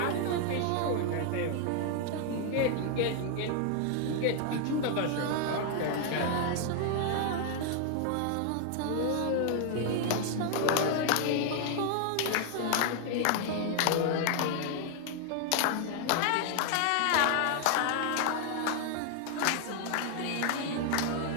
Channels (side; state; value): both; different; correlation 0.00